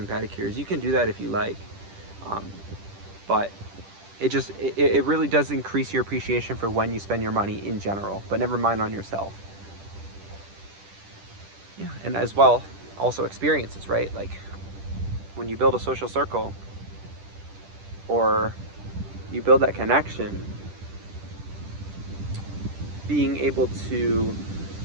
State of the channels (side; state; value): left; late; 10 ms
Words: pedicures. You can do that if you like, but it really does increase your appreciation for when you spend your money in general, but never mind on yourself. Yeah, and as well, also experiences, right? Like when you build a social circle or you build that connection, being able to